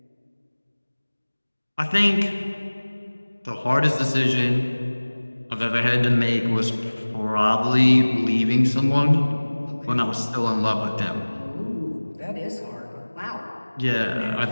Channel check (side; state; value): both; inverted; correlation -1.00